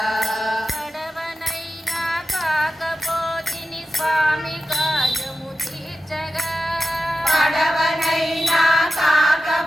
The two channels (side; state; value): both; normal; correlation 0.91